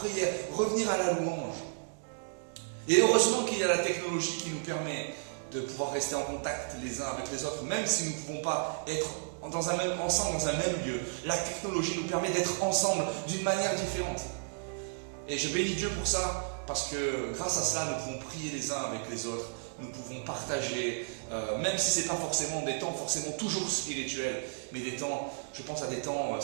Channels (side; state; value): left; silent; digital silence